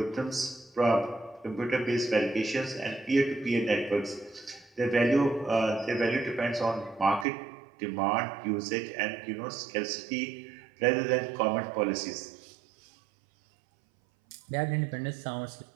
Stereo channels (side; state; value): left; drops out; at 7.2 s